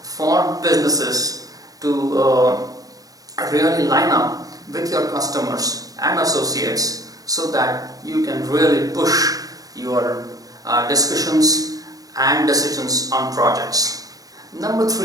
for businesses to really line up with your customers and associates so that you can really push your discussions and decisions on projects. Number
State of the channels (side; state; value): left; late; 0.17 ms